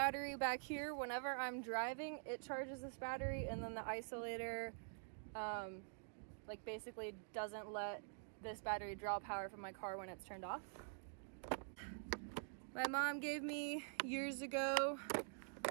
back here whenever I'm driving. It charges this battery, and then the isolator like basically doesn't let this battery draw power from my car when it's turned off. My mom gave me years ago.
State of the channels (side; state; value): left; silent; digital silence